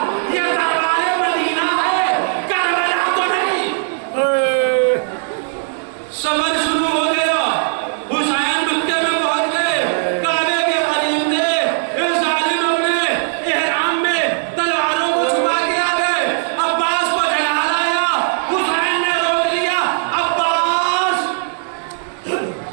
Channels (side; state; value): left; silent; digital silence